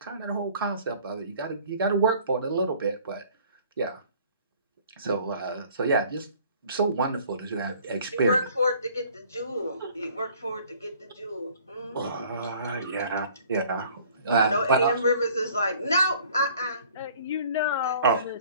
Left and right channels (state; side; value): inverted; both; correlation -0.53